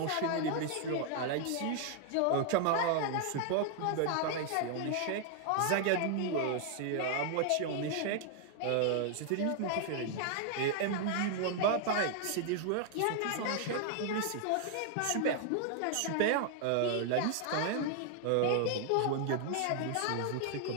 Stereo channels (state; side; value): different; both; correlation 0.00